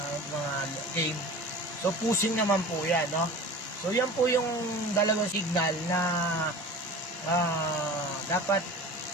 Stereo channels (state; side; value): normal; both; correlation 0.37